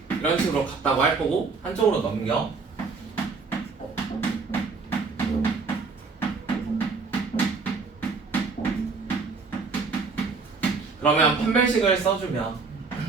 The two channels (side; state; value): left; quieter; 4.6 dB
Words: 이런 식으로 같다고 할 거고 한쪽으로 넘겨. 그러면 판별식을 써주면